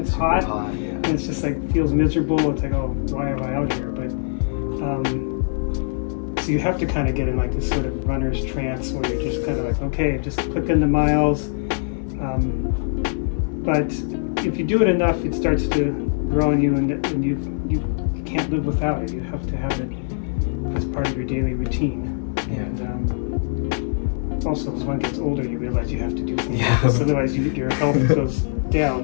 hot, yeah. and it's just like feels miserable. It's like, oh, why am I out here? But so you have to kind of get in like this sort of runner's trance where you're just kind of like, okay, just click into miles. But if you do it enough, it starts to grow on you, and you can't live without it. You have to have it as part of your daily routine. Yeah. And also, as one gets older, you realize you have to do things Yeah. like this, otherwise your health goes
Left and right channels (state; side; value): silent; right; digital silence